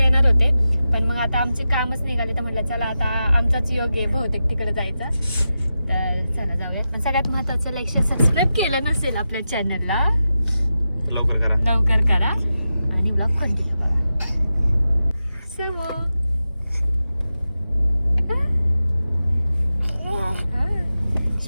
होते. पण मग आता आमचे कामच निघाले, तर म्हटलं चला आता आमचाच योग आहे बहुतेक तिकडे जायचा. तर चला जाऊयात. पण सगळ्यात महत्त्वाचं, लाईक शेअर सबस्क्राईब केलं नसेल आपल्या चॅनलला लवकर करा आणि ब्लॉग कंटिन्यू करा.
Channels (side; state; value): both; inverted; correlation -0.91